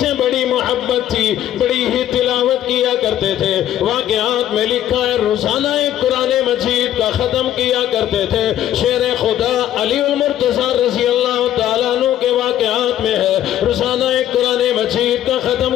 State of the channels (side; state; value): right; quieter; 11.9 dB